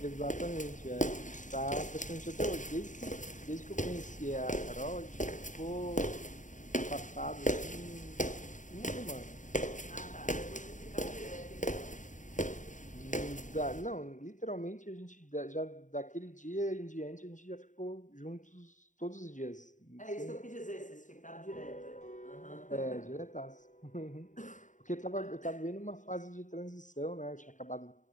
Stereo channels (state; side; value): late; right; 0.36 ms